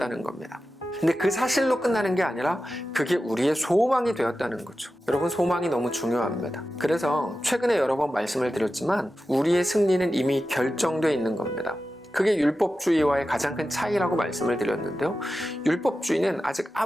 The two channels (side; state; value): both; normal; correlation 0.92